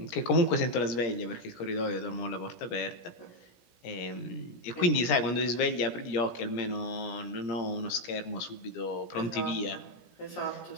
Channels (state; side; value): late; right; 17 ms